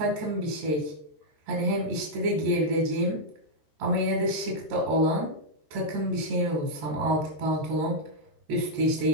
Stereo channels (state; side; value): late; left; 14 ms